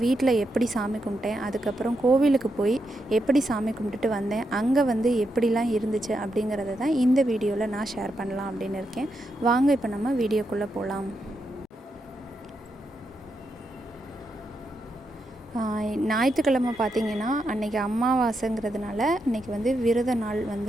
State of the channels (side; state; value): both; normal; correlation 0.83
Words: வீட்டில் எப்படி சாமி கும்பிட்டேன், அதுக்கப்புறம் கோவிலுக்கு போய் எப்படி சாமி கும்பிட்டுட்டு வந்தேன், அங்கே எப்படிலாம் இருந்துச்சு அப்படிங்கிறத தான் இந்த வீடியோவில் நான் ஷேர் பண்ணலாம் அப்படின்னு இருக்கேன். வாங்க இப்போ நம்ம வீடியோக்குள்ளே போகலாம். ஞாயிற்றுக்கிழமை பார்த்திங்கன்னா அன்றைக்கி அமாவாசைங்கிறதுனால அன்றைக்கி விரத நாள்